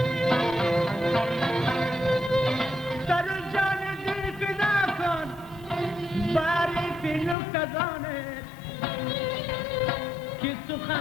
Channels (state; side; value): drops out; right; at 7.4 s